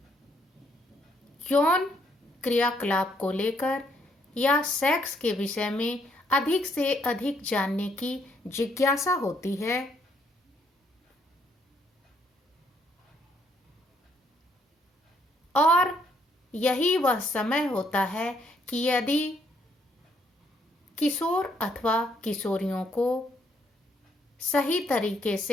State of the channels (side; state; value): both; normal; correlation 0.71